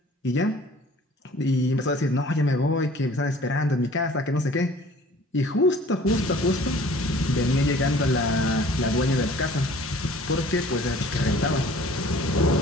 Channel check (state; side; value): normal; both; correlation 0.50